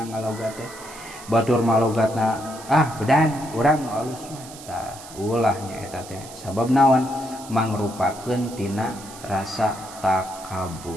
ngalogat teh batur malogatna bedan urang nu alus mah tah ulah nya eta teh sabab naon mangrupakeun tina rasa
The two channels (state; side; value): noise; right; hiss, 16 dB below the sound